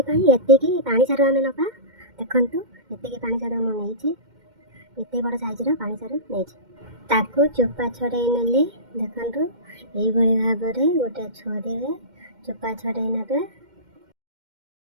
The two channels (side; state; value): left; late; 2.1 ms